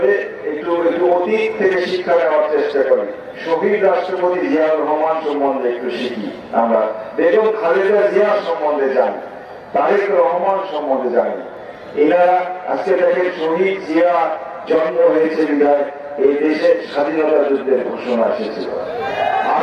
একটু অতীত থেকে শিক্ষা নেওয়ার চেষ্টা করি। শহীদ রাষ্ট্রপতি জিয়াউর রহমান সম্বন্ধে একটু শিখি, আমরা বেগম খালেদা জিয়া সম্বন্ধে জানি, তারেক রহমান সম্বন্ধে জানি। এনারা আজকে দেখেন, শহীদ জিয়া জন্ম হয়েছে বিধায় এই দেশে স্বাধীনতা যুদ্ধের ঘোষণা এসেছিল।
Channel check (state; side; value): identical; both; correlation 1.00